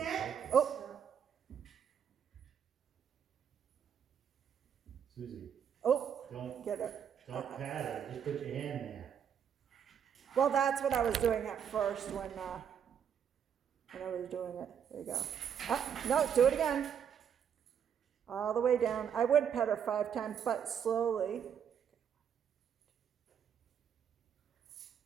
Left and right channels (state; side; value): quieter; left; 8.2 dB